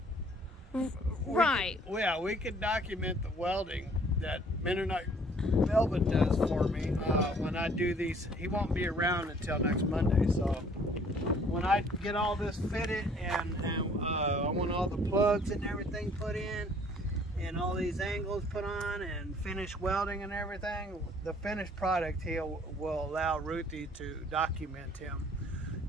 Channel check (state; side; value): normal; both; correlation 0.57